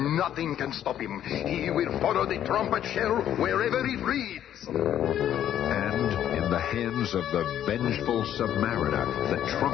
nothing can stop him. He will follow the trumpet shell wherever it leads. And in the hands of the vengeful Submariner, the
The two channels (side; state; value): right; quieter; 10.8 dB